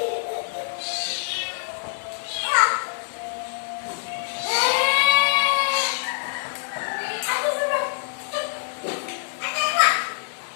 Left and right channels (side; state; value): right; silent; 62 dB below the other